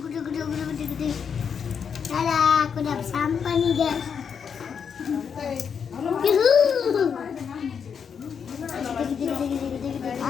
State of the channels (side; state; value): right; quieter; 6.9 dB